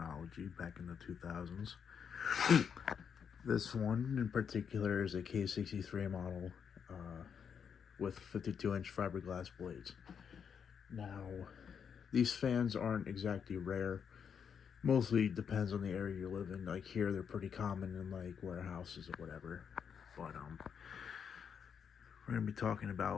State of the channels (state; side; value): quieter; right; 7.2 dB